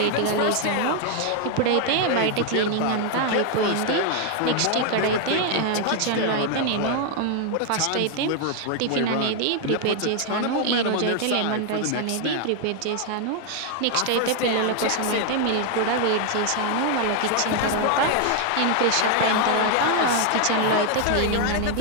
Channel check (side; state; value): both; different; correlation 0.00